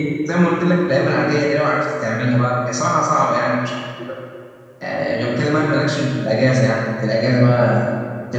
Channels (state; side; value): identical; both; correlation 1.00